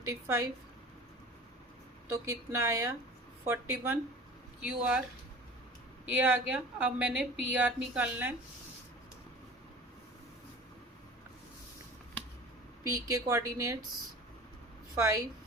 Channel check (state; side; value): normal; both; correlation 0.41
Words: तो कितना आया 41। क्यू आर ये आ गया। अब मैंने पी आर निकालना है। पी के कोऑर्डिनेट्स 5